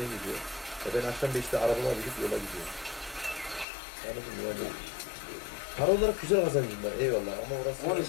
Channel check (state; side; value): drops out; right; at 3.7 s